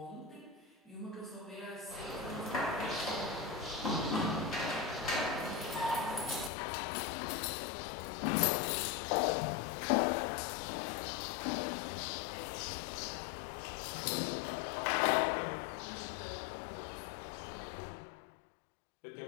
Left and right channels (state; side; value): drops out; right; at 6.5 s